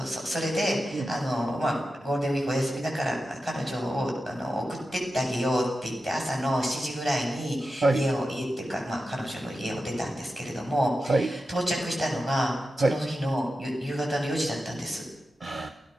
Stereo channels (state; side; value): normal; both; correlation 0.91